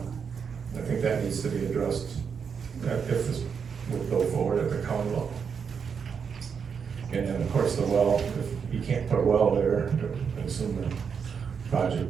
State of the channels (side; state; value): left; quieter; 6.5 dB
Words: think that needs to be addressed if this would go forward at the county level. And then, of course, the well, if you can't put a well there, I assume the project